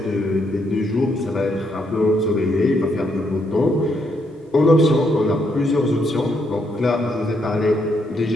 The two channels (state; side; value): normal; both; correlation 0.75